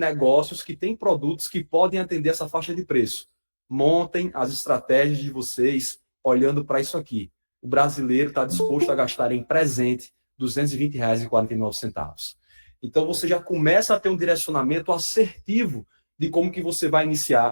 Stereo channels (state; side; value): inverted; both; correlation -1.00